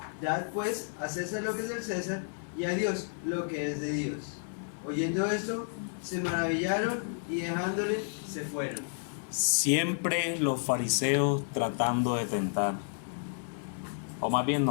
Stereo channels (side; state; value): right; silent; 57 dB below the other